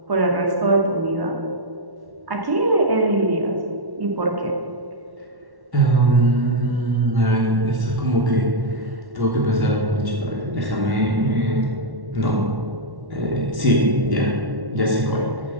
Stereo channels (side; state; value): left; late; 1.1 ms